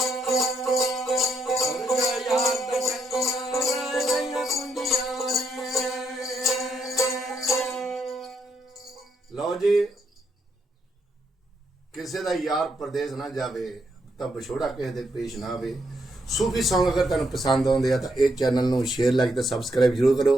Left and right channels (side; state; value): both; normal; correlation 0.77